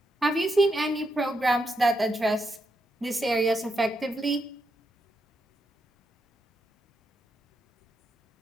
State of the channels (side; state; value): both; normal; correlation 0.82